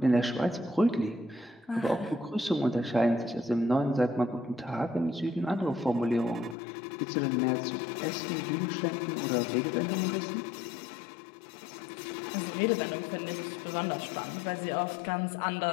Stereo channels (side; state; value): right; drops out; at 6.6 s